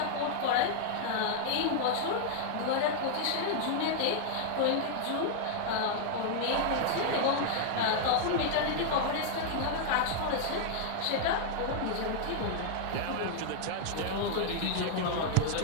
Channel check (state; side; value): different; both; correlation -0.01